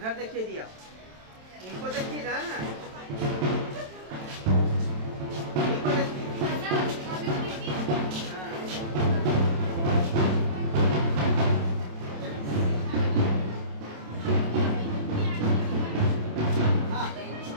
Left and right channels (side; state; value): left; late; 27 ms